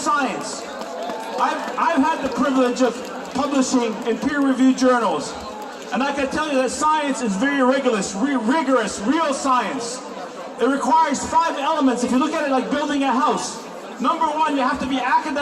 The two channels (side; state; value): both; identical; correlation 1.00